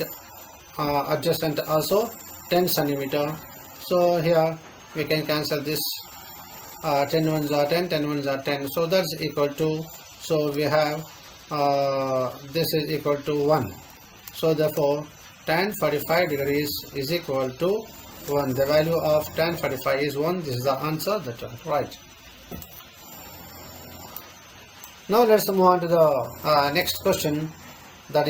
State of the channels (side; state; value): both; identical; correlation 1.00